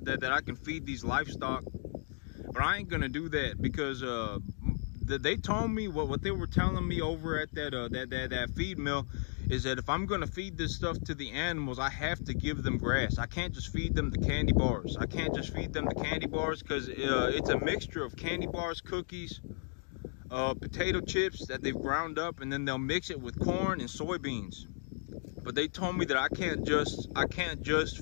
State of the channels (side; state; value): right; silent; 55 dB below the other